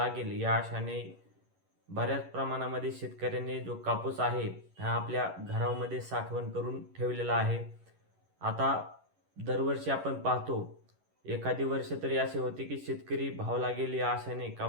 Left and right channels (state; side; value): late; left; 11 ms